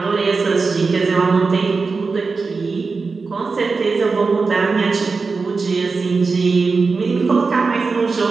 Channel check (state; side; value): quieter; left; 4.4 dB